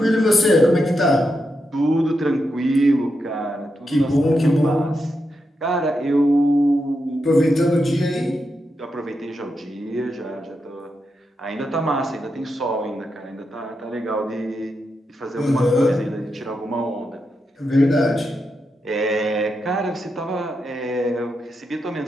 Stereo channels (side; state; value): both; normal; correlation 0.85